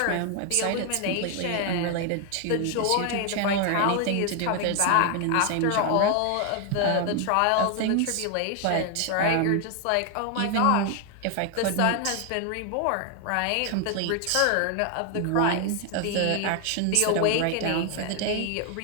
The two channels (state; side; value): different; both; correlation 0.00